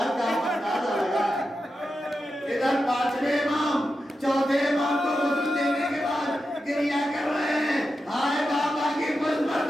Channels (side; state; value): both; normal; correlation 0.89